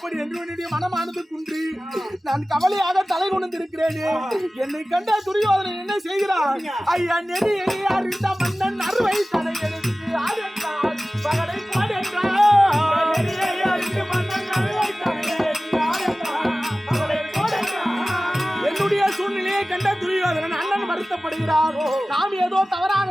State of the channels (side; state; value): both; normal; correlation 0.97